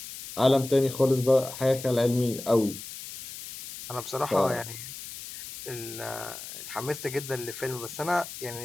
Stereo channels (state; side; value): noise; left; hiss, 11 dB below the sound